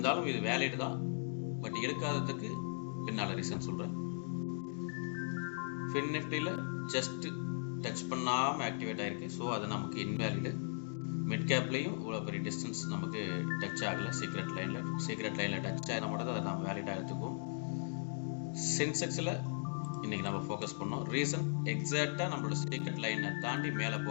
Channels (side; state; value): right; silent; digital silence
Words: இது வேலிட் தான், பட் எடுக்காததுக்கு பின்னால் ரீசன் சொல்கிறேன். ஃபின் நிஃப்டியில் ஜஸ்ட் டச் பண்ணாமல் ஆக்டிவேட் ஆகிருக்கு, ஸோ அது நமக்கு இன்வேலிடு. மிட் கேப்லேயும் இவ்வளோ பெரிய டிஸ்டன்ஸ் நமக்கு டச் ஆகலை. சீக்ரெட் லைனில் டச் ஆகினா மட்டும் அதை நம்ம வேலிடாக எடுத்துக்குவோம். சென்செக்ஸில் இன்றைக்கி நம்ம ஃபோக்கஸ் பண்ணோம். ரீசன் எக்ஸாக்டாக நம்மளோட சீக்ரெட் லைனை தாண்டி மேலே